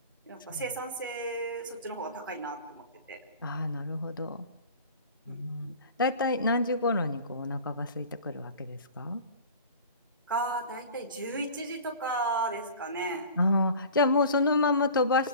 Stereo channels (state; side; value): inverted; both; correlation -0.40